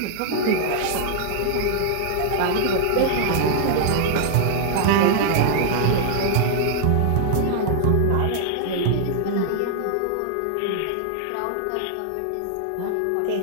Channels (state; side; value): different; both; correlation -0.01